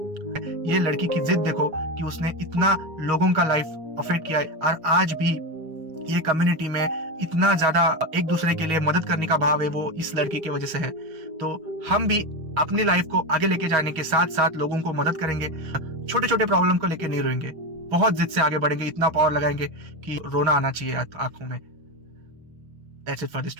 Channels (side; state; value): left; late; 6.3 ms